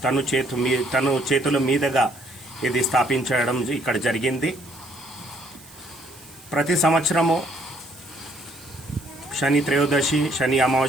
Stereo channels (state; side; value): noise; right; hiss, 22 dB below the sound